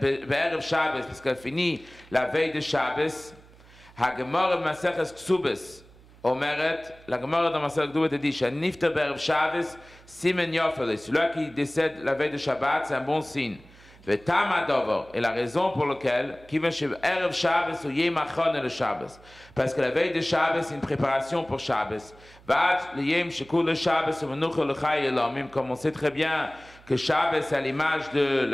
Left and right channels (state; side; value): noise; right; hum, 24 dB below the sound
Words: Be'erev Shabbos, parce qu'elle finit la veille de Shabbos. Hagemara Maseches Ksubes. Omeret, la Gemara dans Maseches Ksubes dit, Shanifta Be'erev Shabbos, Simen Yofele. Celui qui décède la veille de Shabbat, c'est un bon signe. Et la raison pour laquelle, parce que la veille de Shabbos, c'est une préparation pour Shabbos. Comme on sait très bien que Shabbos c'est à l'image de